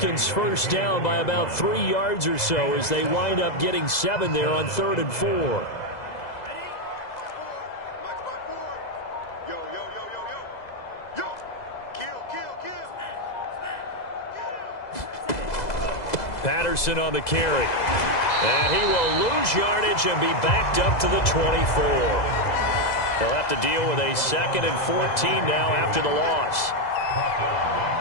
first down by about 3 yards or so as they wind up getting 7 there on 3rd and 4. Patterson on the carry. And he will lose yardage and be backed up to the 24. They'll have to deal with a 2nd and 14 now after the loss.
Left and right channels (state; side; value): late; right; 2.0 ms